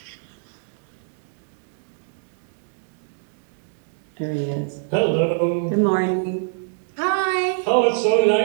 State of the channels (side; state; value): left; silent; digital silence